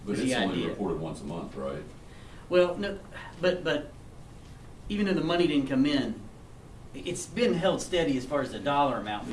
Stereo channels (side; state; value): both; identical; correlation 1.00